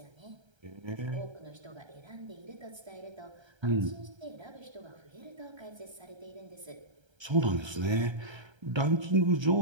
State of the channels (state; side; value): late; left; 1.3 ms